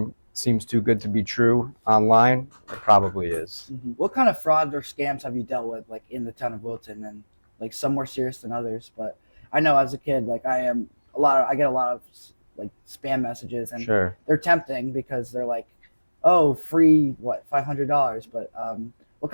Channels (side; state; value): both; inverted; correlation -1.00